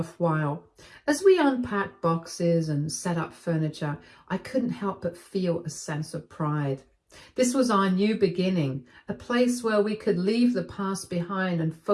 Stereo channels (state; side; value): identical; both; correlation 1.00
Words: As we unpacked boxes and set up furniture, I couldn't help but feel a sense of pride. This was our new beginning, a place where we could leave the past behind and